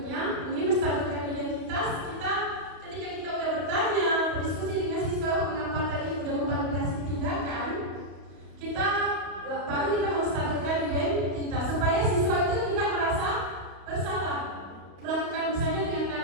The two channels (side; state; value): left; late; 31 ms